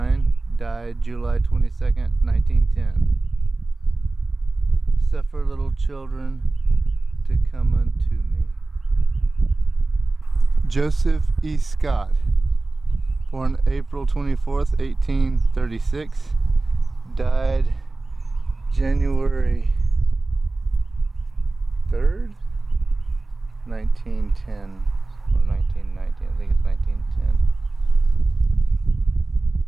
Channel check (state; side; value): quieter; left; 3.2 dB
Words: died July 22nd, 1910. Suffer little children to come unto me. Joseph E. Scott, born April 24th, 1836, died January 3rd, 1910. Or 1919, I think it's